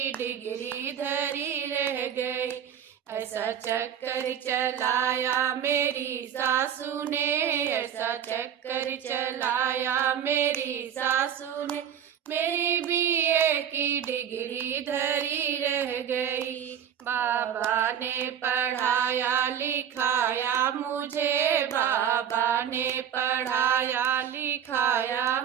डिग्री धरी रह गई। ऐसा चक्कर चलाया मेरी सासू ने, ऐसा चक्कर चलाया मेरी सासू ने, मेरी बीए की डिग्री धरी रह गई। बाबा ने पढ़ाया लिखाया मुझे, बाबा ने पढ़ाया लिखाया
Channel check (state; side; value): quieter; left; 9.1 dB